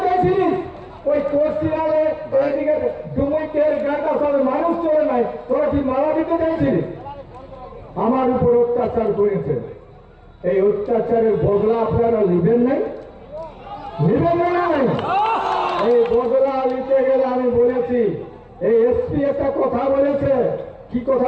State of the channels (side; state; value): both; identical; correlation 1.00